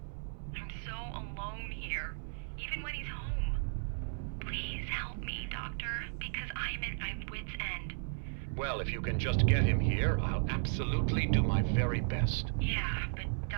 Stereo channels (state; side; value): silent; left; 54 dB below the other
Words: I'm so alone here, even when he's home. Please help me, Doctor, because I'm at my wit's end. Well, if you can just get him here, I'll absolutely do my very best. Yeah, but